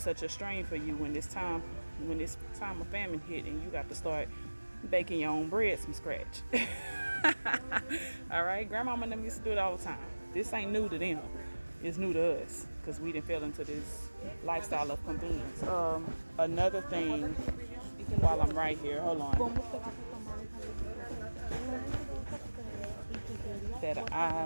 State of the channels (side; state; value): both; inverted; correlation -1.00